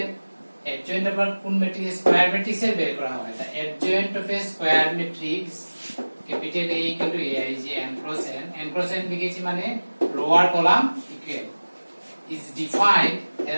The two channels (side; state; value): both; inverted; correlation -1.00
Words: adjoint of কোন ম্যাট্রিক্স, স্কয়ার ম্যাট্রিক্স এর বের করা হয়। The adjoint of a square matrix capital A equal to aij n cross n, n cross n লিখেছি মানে lower column equal is defined